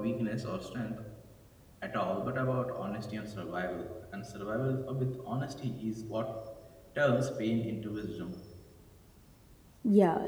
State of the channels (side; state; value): both; identical; correlation 1.00